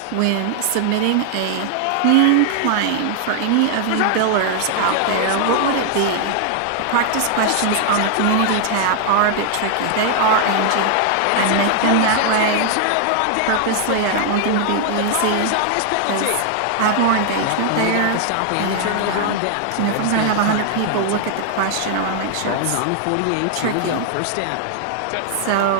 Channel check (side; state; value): both; different; correlation 0.00